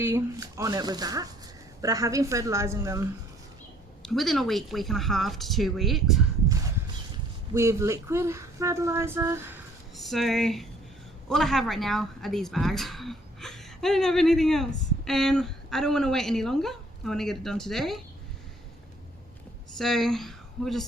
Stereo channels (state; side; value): normal; both; correlation 0.60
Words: on it with that, but I have been fertilizing them within a week, week and a half to 2 weeks with liquid fertilizer. So all I have right now are these bags. I don't have anything else, and I don't want to wait any longer. I want to get it done today, so we'll